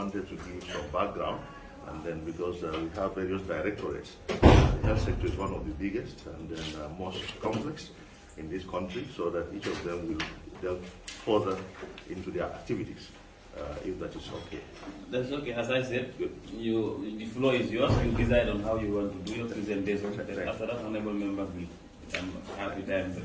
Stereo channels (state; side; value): identical; both; correlation 1.00